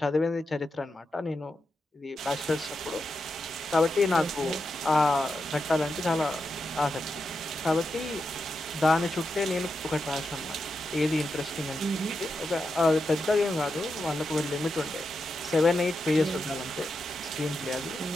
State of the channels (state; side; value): normal; both; correlation 0.87